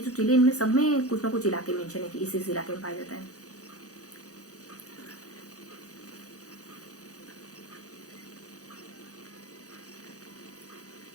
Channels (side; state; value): right; late; 0.66 ms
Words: जिले इनमें सब में कुछ ना कुछ इलाके मेंशन है कि इस इलाके में पाया जाता है।